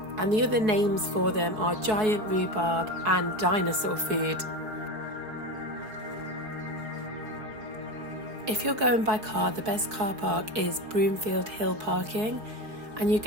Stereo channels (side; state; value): left; late; 4.7 ms